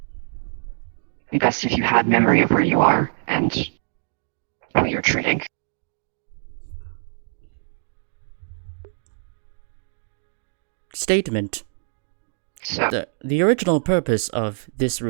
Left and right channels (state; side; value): silent; left; digital silence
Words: It'd be best if you had memory of where you are and who you're treating. Statement. So, the original purpose of this